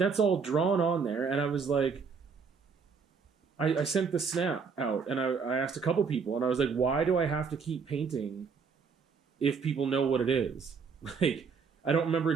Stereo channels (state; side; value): quieter; left; 5.6 dB